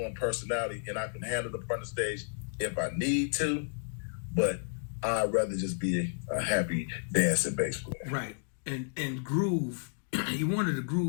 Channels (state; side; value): silent; right; digital silence